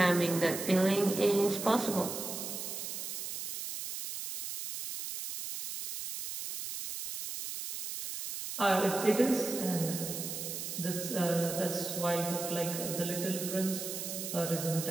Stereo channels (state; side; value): noise; right; hiss, 6 dB below the sound